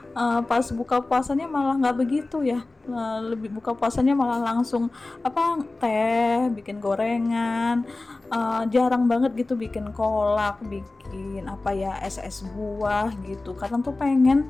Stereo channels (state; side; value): quieter; right; 3.2 dB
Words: Pas buka puasanya malah nggak begitu ya. Lebih buka puasanya malah langsung apa, teh, bikin gorengan, jarang banget gitu bikin kolak, bikin apa ya, es buah gitu. Kadang tuh pengen,